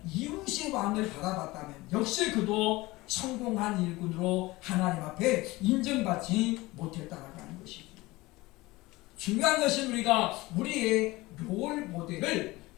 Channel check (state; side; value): quieter; right; 20.5 dB